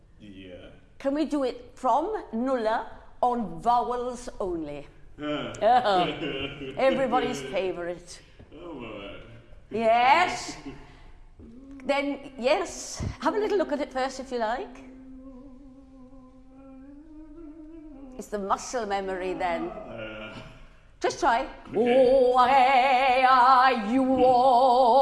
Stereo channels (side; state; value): both; identical; correlation 1.00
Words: Yeah. Can we do it from nulla on vowels only? Everybody's favourite. Oh, well. Yes. Then, yes, have a little look at it first if you like. It's the muscle memory then. Just try. Okay. Oh, hey, you,